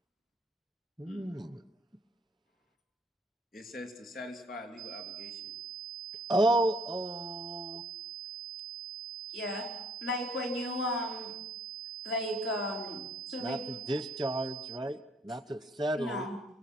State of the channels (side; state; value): both; normal; correlation 0.63